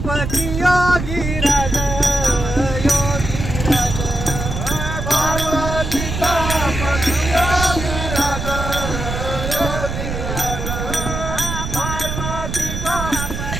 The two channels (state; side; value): noise; right; rumble, 4 dB below the sound